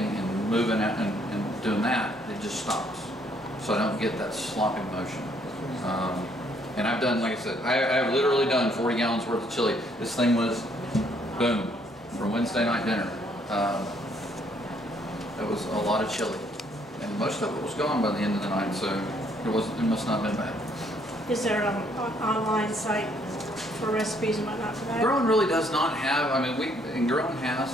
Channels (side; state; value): both; normal; correlation 0.67